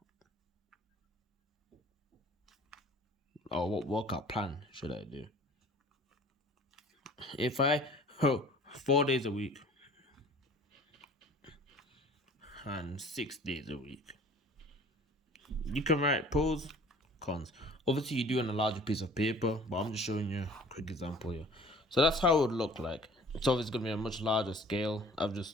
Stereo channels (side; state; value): both; normal; correlation 0.49